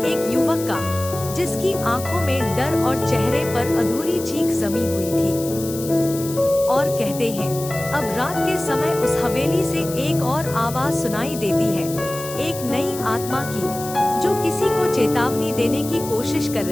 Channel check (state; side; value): noise; left; hiss, 11 dB below the sound